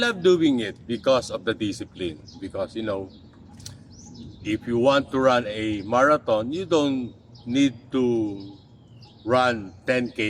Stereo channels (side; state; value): both; identical; correlation 1.00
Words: love doing it because of the discipline. Because, if you want to run a marathon, you don't need to run